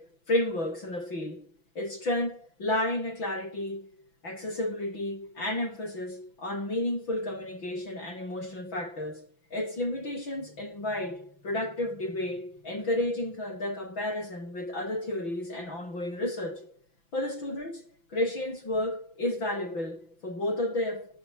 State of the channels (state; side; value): late; right; 6.0 ms